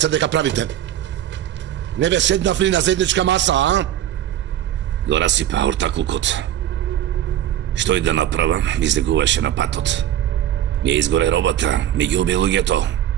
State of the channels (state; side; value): quieter; left; 11.7 dB